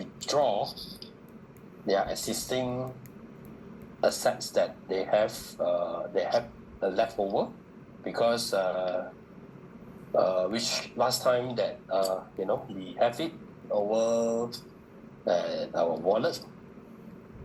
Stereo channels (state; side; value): identical; both; correlation 1.00